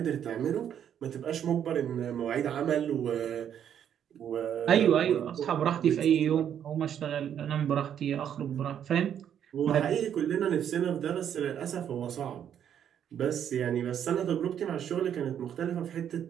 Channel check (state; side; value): quieter; left; 9.3 dB